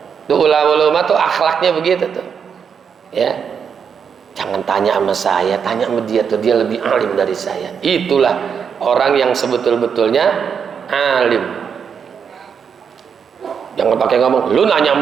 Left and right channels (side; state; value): left; quieter; 6.9 dB